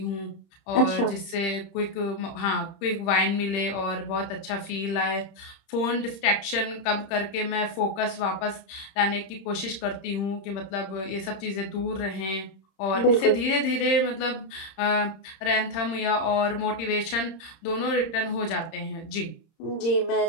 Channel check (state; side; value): late; right; 30 ms